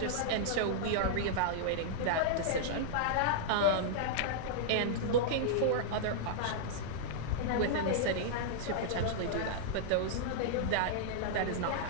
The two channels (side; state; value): both; different; correlation -0.02